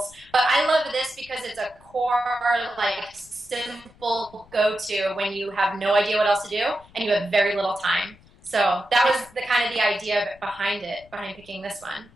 But I love this because it's a core, like, simple go-to when you have no idea what else to do and you have very little time. So that was the idea behind picking this one.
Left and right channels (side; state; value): left; noise; rumble, 26 dB below the sound